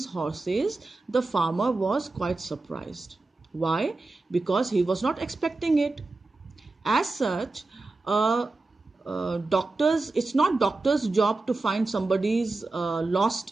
horses, the farmer was quite surprised. Why? Because he was not expecting it. As such, doctors, it's not doctor's job to find somebody's lost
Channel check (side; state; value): left; quieter; 3.3 dB